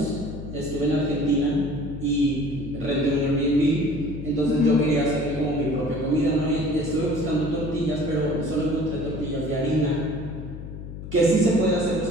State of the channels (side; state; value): left; noise; hum, 10 dB below the sound